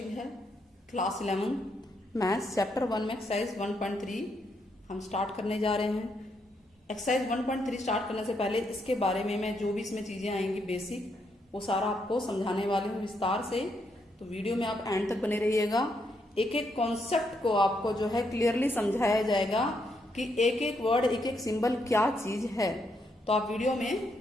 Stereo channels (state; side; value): normal; both; correlation 0.77